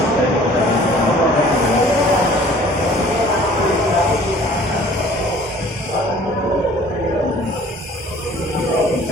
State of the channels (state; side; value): normal; both; correlation 0.51